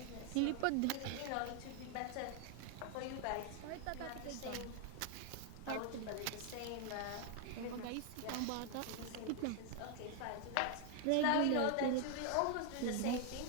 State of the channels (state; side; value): different; both; correlation 0.00